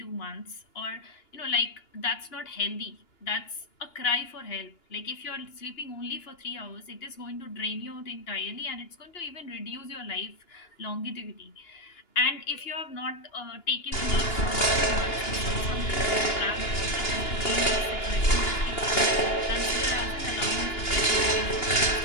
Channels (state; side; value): late; right; 2.9 ms